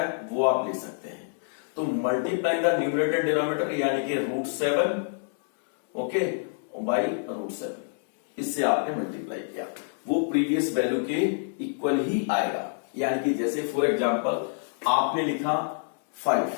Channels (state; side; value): silent; right; digital silence